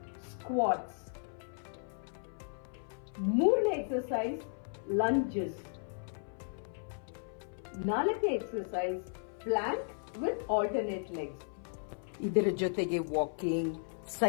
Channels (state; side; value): silent; right; 54 dB below the other